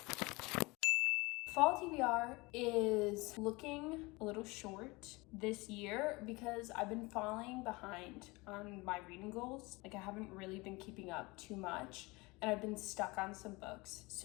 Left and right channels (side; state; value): right; quieter; 24.1 dB